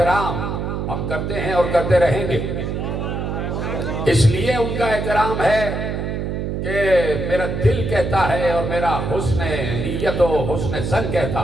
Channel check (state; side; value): noise; right; hum, 3 dB below the sound